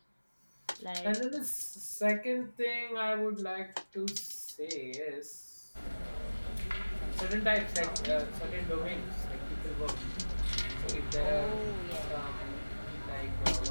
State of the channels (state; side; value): inverted; both; correlation -1.00